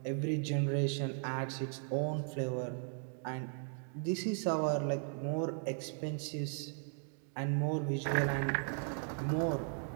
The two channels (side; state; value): left; silent; 53 dB below the other